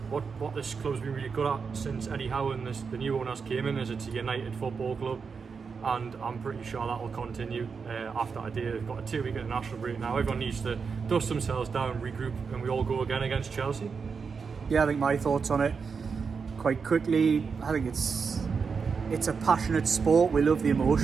what this club's been really good at since Eddie Howe and the new owners came in is it's a United football club, and I'm pretty sure that will continue after today. They've got a 2-week international break now. Everyone needs to dust themselves down, regroup, and we all go again against Chelsea. Yeah, I think my thoughts on it quite quickly. I think it's a passionate sport. We love the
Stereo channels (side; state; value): left; quieter; 5.5 dB